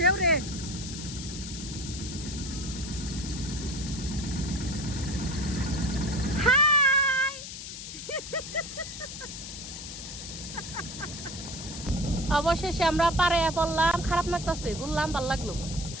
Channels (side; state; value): left; noise; hiss, 9 dB below the sound